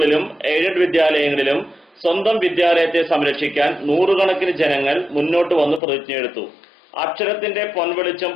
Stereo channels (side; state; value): right; drops out; at 5.8 s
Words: എയ്ഡഡ് വിദ്യാലയങ്ങളിലും സ്വന്തം വിദ്യാലയത്തെ സംരക്ഷിക്കാൻ നൂറുകണക്കിന് ജനങ്ങൾ മുന്നോട്ട് വന്ന് പ്രതിജ്ഞയെടുത്തു. അക്ഷരത്തിന്റെ പൊൻവെളിച്ചം